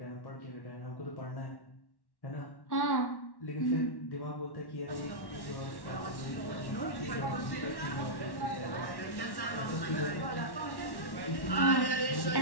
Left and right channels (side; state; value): right; late; 1.1 ms